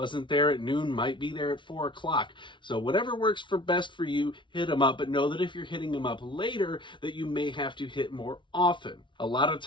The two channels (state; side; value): late; right; 0.24 ms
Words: there at noon might be there at 4 o'clock. So whatever works for best for you, hit them up. But know that if you're hitting them up later, that you may have to hit more often. A lot of